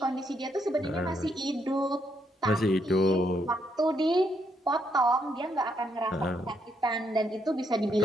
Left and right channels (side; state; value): both; normal; correlation 0.75